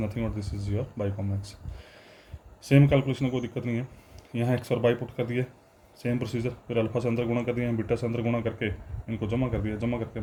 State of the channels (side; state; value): both; identical; correlation 1.00